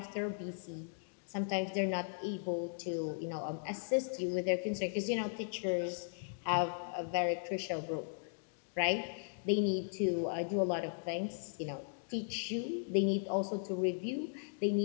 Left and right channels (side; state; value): right; silent; digital silence